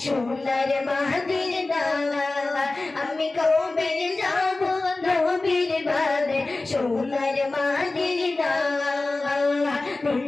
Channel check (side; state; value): right; quieter; 3.2 dB